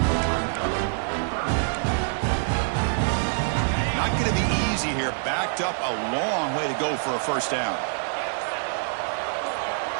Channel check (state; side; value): silent; left; 61 dB below the other